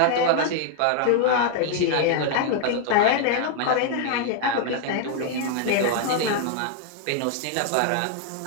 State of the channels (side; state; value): both; different; correlation 0.00